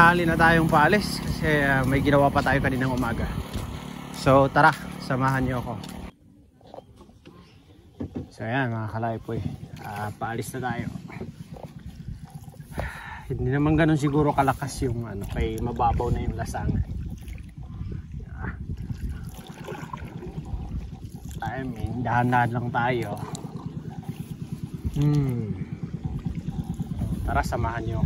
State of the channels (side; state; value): both; identical; correlation 1.00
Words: na tayong paalis kasi may ginawa pa tayo kaninang umaga. So tara, samahan niyo ako. So ayan mga Kalaypoy, paalis na tayo. Hindi naman ganun siguro kalakas yung kay mababaw na yung lasangan. I mean, dahan-dahan lang tayo. Tara, samahan niyo